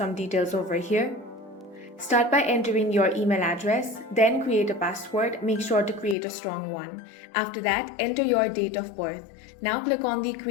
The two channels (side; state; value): right; drops out; at 6.2 s